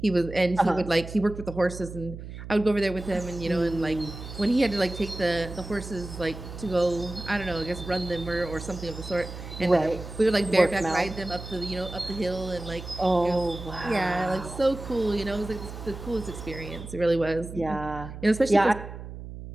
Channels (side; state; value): right; noise; hum, 11 dB below the sound